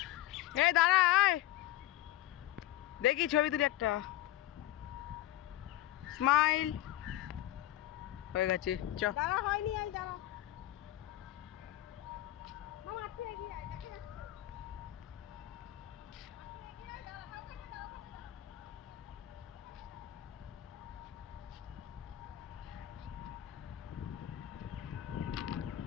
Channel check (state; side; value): quieter; right; 14.8 dB